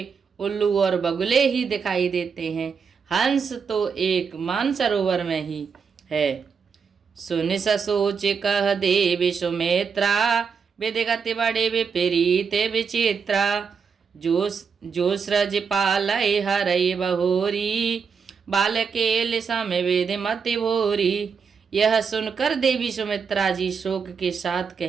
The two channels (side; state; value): left; quieter; 6.0 dB